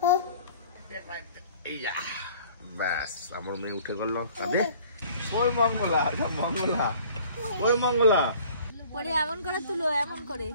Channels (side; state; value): both; inverted; correlation -0.51